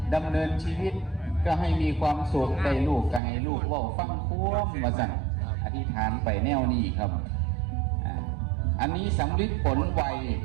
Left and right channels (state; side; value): drops out; left; at 3.2 s